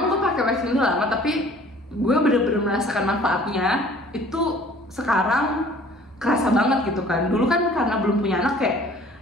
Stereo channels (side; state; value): both; normal; correlation 0.52